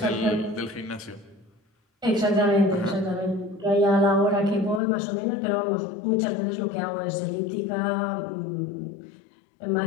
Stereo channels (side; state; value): right; drops out; at 4.8 s